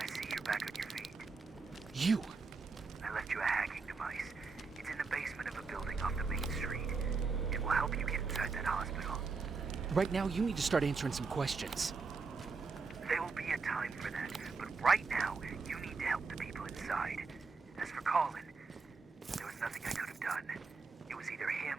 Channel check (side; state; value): left; quieter; 4.5 dB